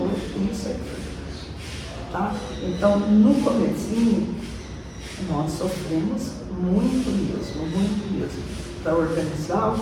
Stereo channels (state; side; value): identical; both; correlation 1.00